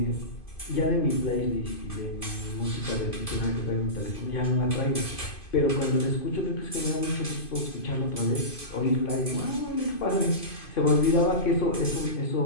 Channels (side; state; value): right; late; 2.5 ms